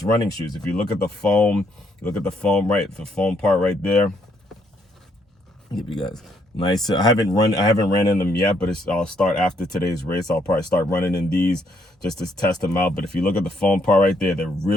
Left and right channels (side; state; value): both; normal; correlation 0.71